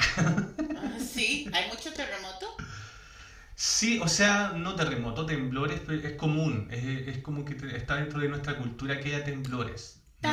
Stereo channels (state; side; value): identical; both; correlation 1.00